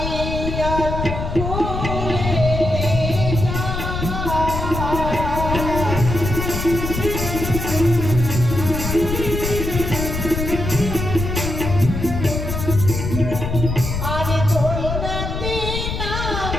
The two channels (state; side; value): noise; left; rumble, 4 dB below the sound